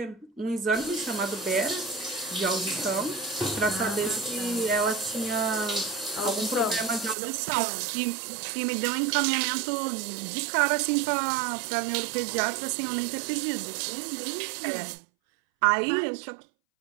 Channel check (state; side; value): drops out; left; at 7.2 s